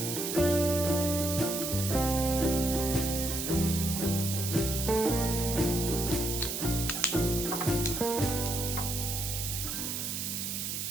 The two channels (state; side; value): noise; right; hiss, 3 dB below the sound